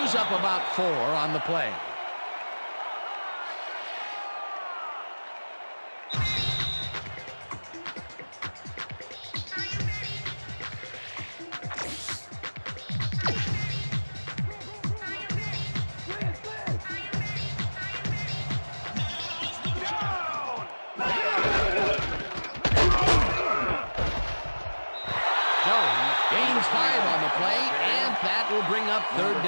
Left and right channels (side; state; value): both; inverted; correlation -1.00